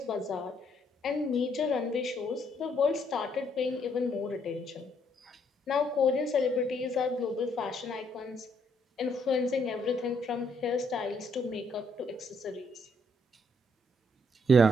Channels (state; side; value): normal; both; correlation 0.71